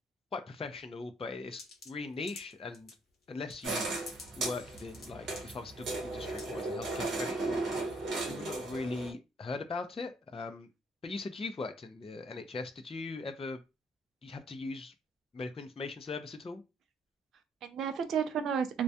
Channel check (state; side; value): normal; both; correlation 0.65